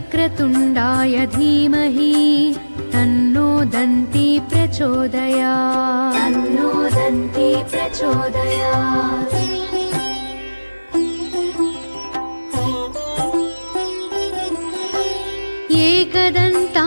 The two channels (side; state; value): both; inverted; correlation -1.00